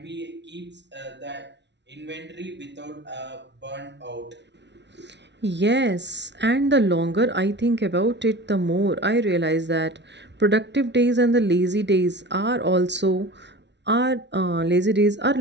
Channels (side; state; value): left; late; 0.51 ms